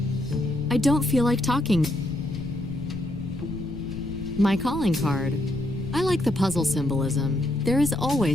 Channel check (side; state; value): left; noise; rumble, 12 dB below the sound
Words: I don't feel like talking. My calling card. I like the puzzle symbolism. There is